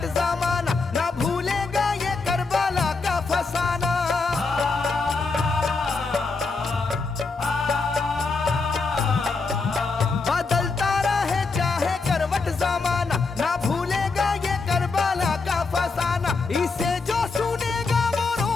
जमाना, ना भूलेगा ये करबला का फसाना। बदलता रहे चाहे करवट जमाना, ना भूलेगा ये करबला का फसाना। इसे जो सुनेगा वो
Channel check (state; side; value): quieter; right; 4.2 dB